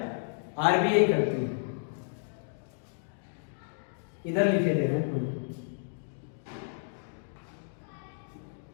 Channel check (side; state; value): right; silent; digital silence